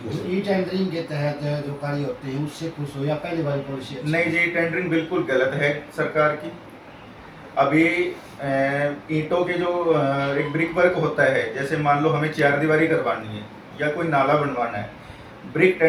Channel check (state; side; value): identical; both; correlation 1.00